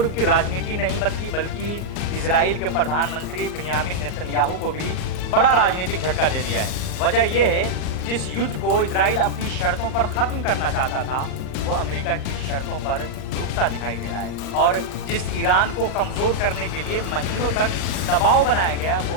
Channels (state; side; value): late; right; 38 ms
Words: की राजनीति नहीं बदली, बल्कि इजराइल के प्रधानमंत्री बिन्यामिन नेतन्याहू को भी बड़ा राजनीतिक झटका दे दिया है। वजह यह है, जिस युद्ध को इजराइल अपनी शर्तों पर खत्म करना चाहता था, वो अमेरिका की शर्तों पर रुकता दिखाई दे रहा है। और जिस ईरान को कमजोर करने के लिए महीनों तक दबाव बनाया गया,